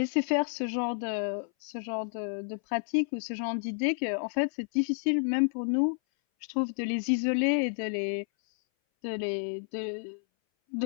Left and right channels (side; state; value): right; silent; 58 dB below the other